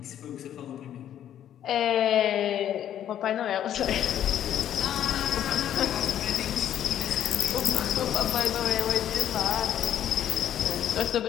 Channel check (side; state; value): right; quieter; 10.7 dB